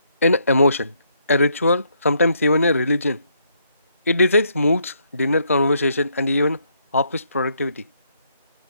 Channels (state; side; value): inverted; both; correlation -0.73